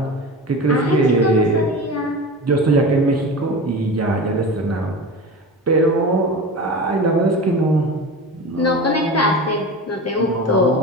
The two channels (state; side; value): normal; both; correlation 0.30